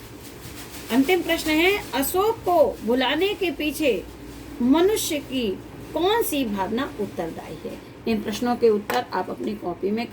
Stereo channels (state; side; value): identical; both; correlation 1.00